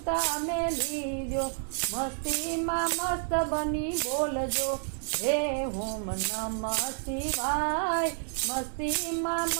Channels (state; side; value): silent; left; 58 dB below the other